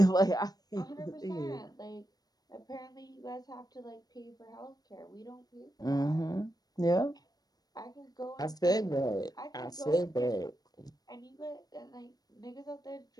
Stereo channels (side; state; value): right; late; 0.19 ms